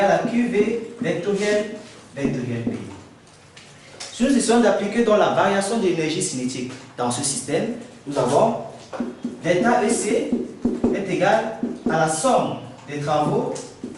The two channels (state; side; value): identical; both; correlation 1.00